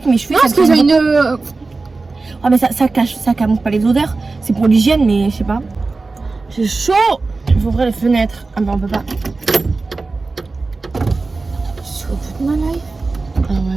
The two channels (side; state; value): left; quieter; 3.7 dB